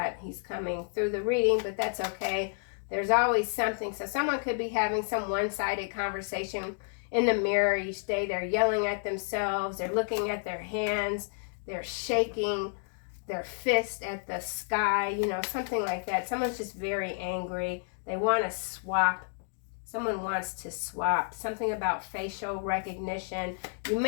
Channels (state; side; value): silent; right; 57 dB below the other